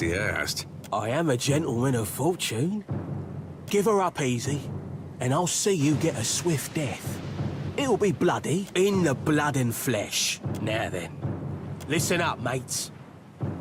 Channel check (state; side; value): identical; both; correlation 1.00